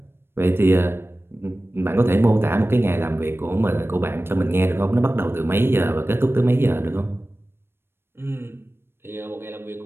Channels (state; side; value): late; left; 0.11 ms